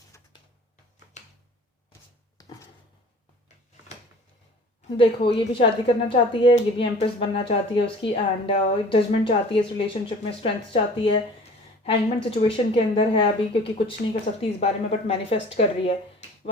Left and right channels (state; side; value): normal; both; correlation 0.46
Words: देखो, ये भी शादी करना चाहती है, ये भी एम्प्रेस बनना चाहती है उसकी, एंड जजमेंट चाहती है इस रिलेशनशिप में, स्ट्रेंथ चाहती है, हैंगमैन सिचुएशन के अंदर है अभी क्योंकि कुछ नहीं कर सकती इस बारे में, बट मैनिफेस्ट कर रही है।